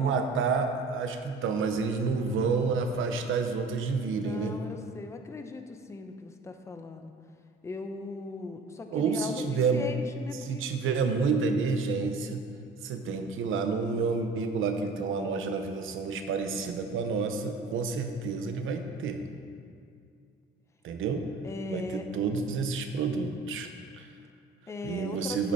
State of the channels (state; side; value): quieter; left; 3.9 dB